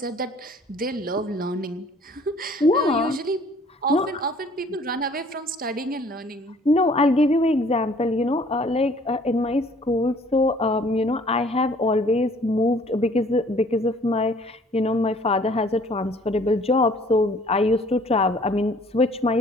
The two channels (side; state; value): both; normal; correlation 0.56